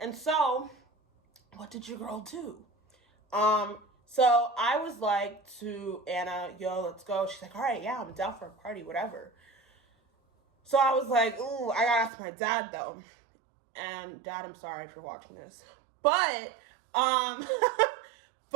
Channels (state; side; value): drops out; left; at 12.1 s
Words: so, what did your girl do? So I was like to Anna, yo, let's go. She's like, all right, yeah, I'm down for a party, whatever. So I was like, ooh, I gotta ask my dad though. And Dad, I'm sorry if you're watching this. But, but